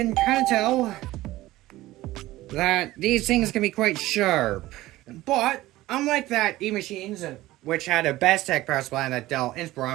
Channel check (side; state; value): left; quieter; 17.0 dB